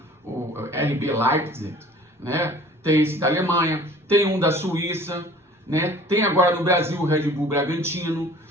o RB Leipzig, né? Tem esse da Alemanha, tem um da Suíça, né? Tem agora no Brasil o Red Bull Bragantino.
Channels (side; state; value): both; normal; correlation 0.48